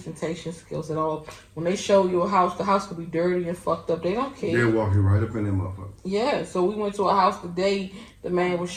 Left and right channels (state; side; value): identical; both; correlation 1.00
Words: skills at all. When they show you a house, the house could be dirty and fucked up. They don't care. They'll walk you right up in that motherfucker. Yeah, so we went to a house today. The man was